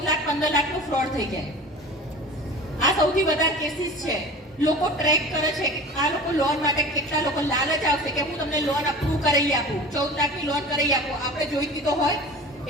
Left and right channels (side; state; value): both; normal; correlation 0.37